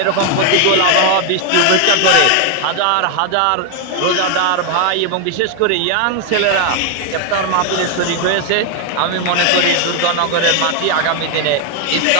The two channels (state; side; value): different; both; correlation 0.01